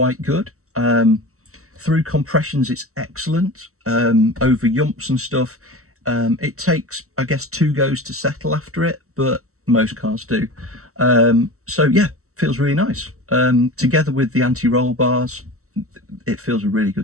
good. Through compressions it's excellent. Over yumps and stuff, it takes, I guess, 2 goes to settle after it, but most cars do. So yeah, feels really nice. Together with the anti-roll bars, it feels a really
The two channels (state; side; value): late; left; 0.64 ms